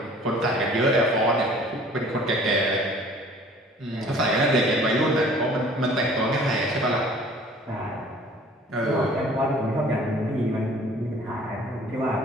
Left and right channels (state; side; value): normal; both; correlation 0.51